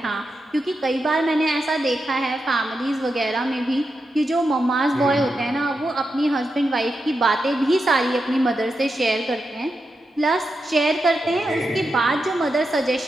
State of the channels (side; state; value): both; normal; correlation 0.87